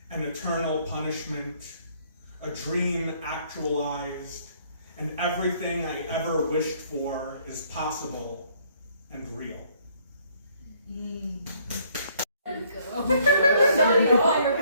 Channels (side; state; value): both; inverted; correlation -0.64